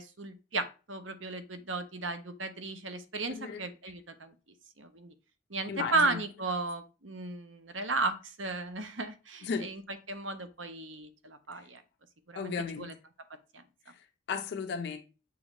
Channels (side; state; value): both; normal; correlation 0.15